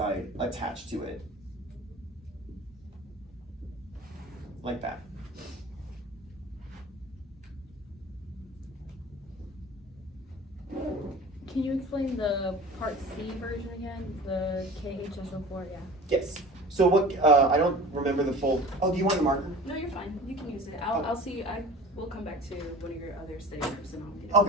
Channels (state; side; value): normal; both; correlation 0.40